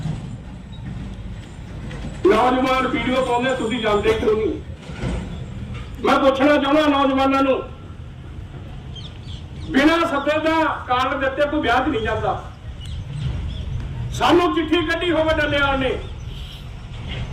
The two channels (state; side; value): identical; both; correlation 1.00